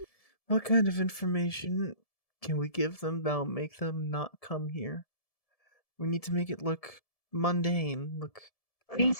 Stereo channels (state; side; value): late; right; 1.7 ms